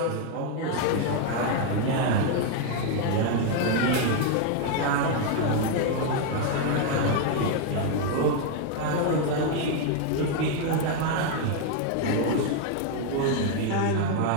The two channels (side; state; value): both; different; correlation 0.01